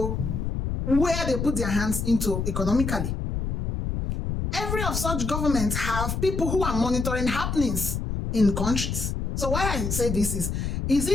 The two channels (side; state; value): left; noise; rumble, 2 dB below the sound